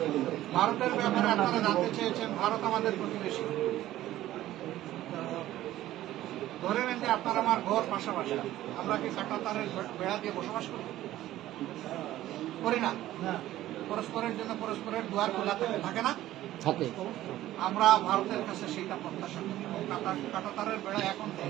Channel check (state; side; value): quieter; left; 14.4 dB